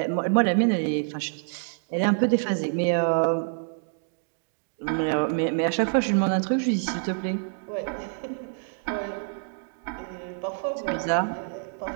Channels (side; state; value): left; silent; digital silence